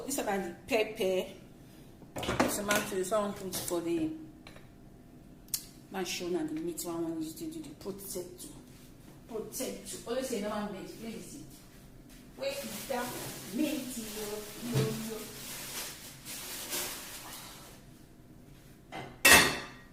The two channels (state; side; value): identical; both; correlation 1.00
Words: this is about the pepper. Tomato. Someone put for the mansion and the meat. One used to do the potato. Always say no one made. Please. Where is that meat? Yo.